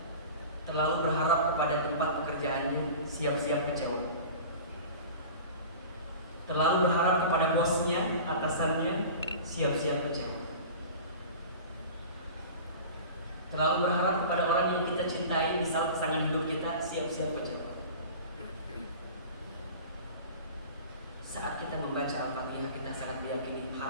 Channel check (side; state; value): both; inverted; correlation -0.37